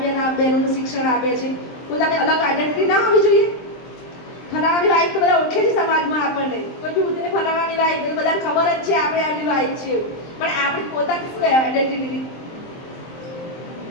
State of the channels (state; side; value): late; right; 23 ms